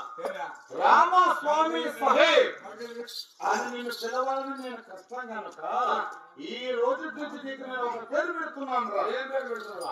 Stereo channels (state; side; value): identical; both; correlation 1.00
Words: రామస్వామి సహే అని నేను పిలవాలని నేను కష్టం కనుక ఈ రోజు నుంచి నీకు నేను ఒక పేరు పెడుతున్నాను రా. ఏం పేరు పెడుతున్నా?